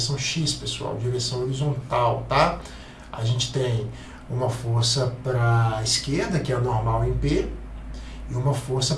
x, pessoal, direção horizontal, tá? A gente tem uma força para a esquerda, que é a normal em P, e uma força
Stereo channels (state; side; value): identical; both; correlation 1.00